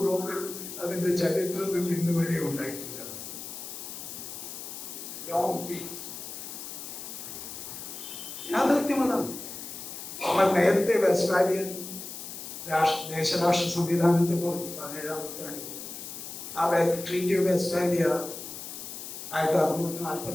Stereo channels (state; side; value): noise; left; hiss, 9 dB below the sound